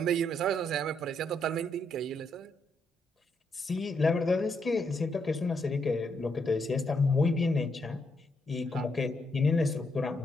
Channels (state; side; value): normal; both; correlation 0.77